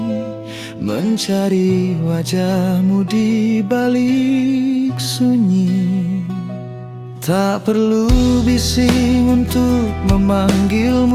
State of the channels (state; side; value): identical; both; correlation 1.00